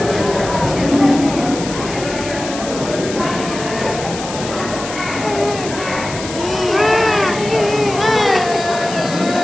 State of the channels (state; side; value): noise; left; hiss, 10 dB below the sound